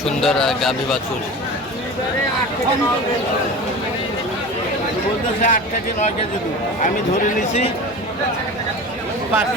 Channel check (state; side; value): normal; both; correlation 0.33